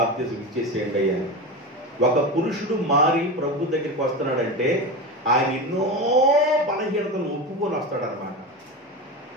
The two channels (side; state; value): both; normal; correlation 0.22